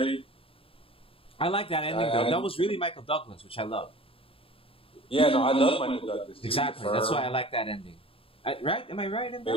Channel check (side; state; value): right; late; 0.27 ms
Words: I like that ending, though. That was really Michael Douglas, which I love. Yeah, no, I love Michael Douglas. Exactly. That's why I like that ending. Right? Am I right in